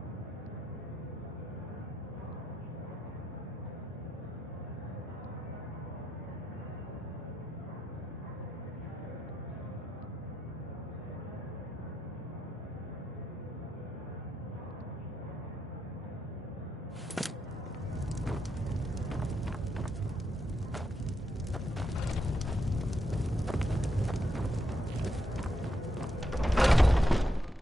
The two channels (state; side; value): normal; both; correlation 0.81